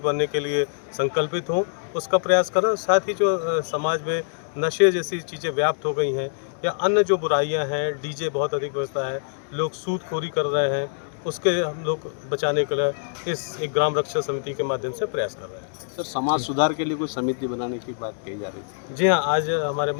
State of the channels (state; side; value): silent; right; digital silence